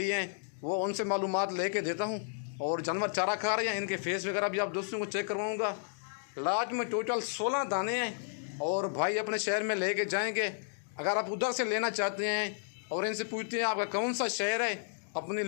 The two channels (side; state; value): right; silent; digital silence